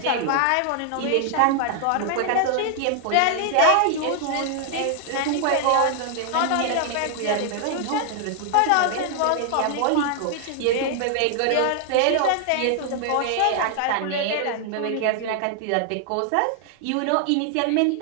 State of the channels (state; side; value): different; both; correlation 0.00